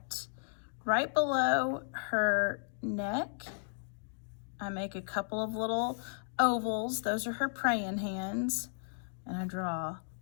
Right below her neck, I make a couple of little ovals. Those are her praying hands. And I draw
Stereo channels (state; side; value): silent; right; digital silence